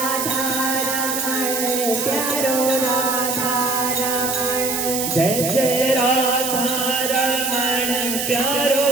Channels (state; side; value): noise; right; hiss, 2 dB below the sound